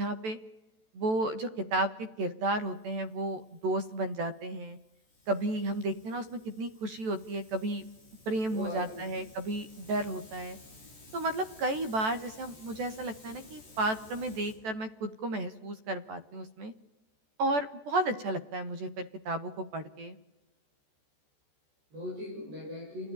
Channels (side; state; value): left; late; 14 ms